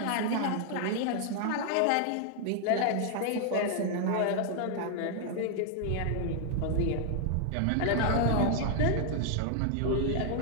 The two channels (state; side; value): different; both; correlation 0.00